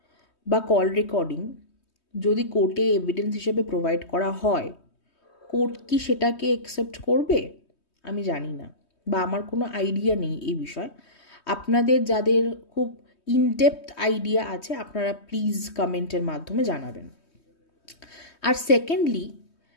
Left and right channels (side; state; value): right; late; 3.2 ms